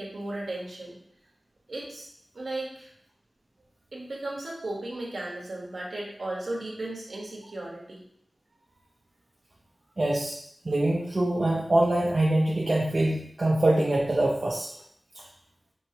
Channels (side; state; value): both; normal; correlation 0.97